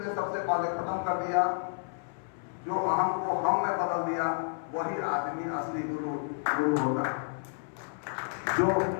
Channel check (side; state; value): right; silent; 57 dB below the other